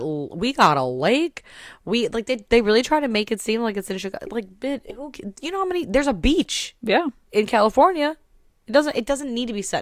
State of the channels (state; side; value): identical; both; correlation 1.00